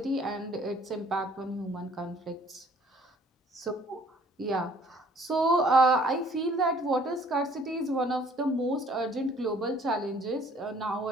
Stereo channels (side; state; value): both; normal; correlation 0.58